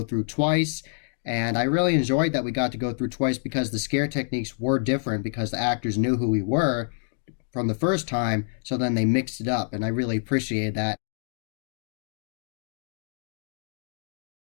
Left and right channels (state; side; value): silent; right; digital silence